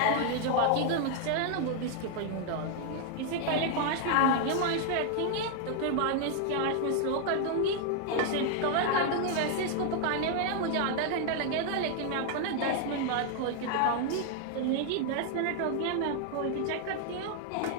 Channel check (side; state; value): both; different; correlation 0.00